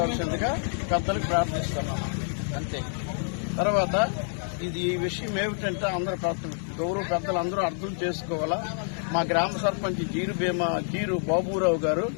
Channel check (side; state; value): right; silent; 60 dB below the other